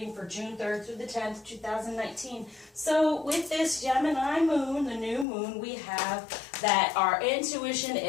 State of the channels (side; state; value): right; drops out; at 5.2 s